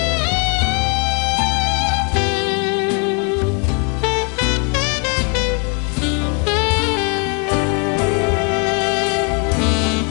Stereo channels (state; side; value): quieter; right; 37.0 dB